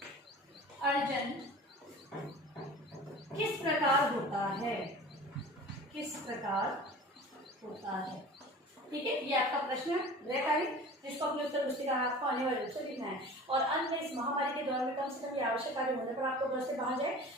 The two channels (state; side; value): normal; both; correlation 0.40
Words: अर्जन किस प्रकार होता है? ठीक है, ये आपका प्रश्न है जिसको अपने उत्तर पुस्तिका आपको अनिवार्य रूप से लिखना है। और अंत में इस महामारी के दौरान में कम से कम ये आवश्यक कार्य होने पर आपको घर से बाहर